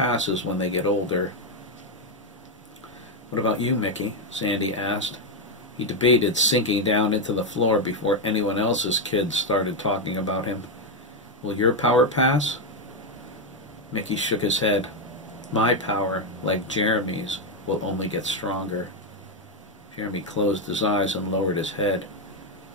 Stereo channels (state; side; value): normal; both; correlation 0.03